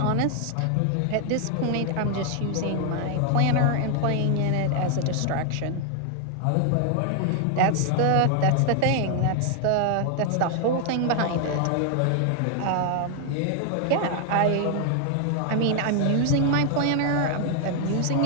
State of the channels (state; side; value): different; both; correlation 0.00